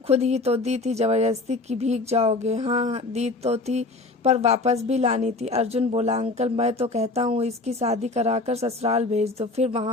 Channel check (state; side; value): quieter; right; 3.3 dB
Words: खुद ही तो दी थी, जबरदस्ती की भीग जाओगे। हाँ दी तो थी, पर वापस भी लानी थी। अर्जुन बोला, अंकल, मैं तो कहता हूँ इसकी शादी कराकर ससुराल भेज दो, फिर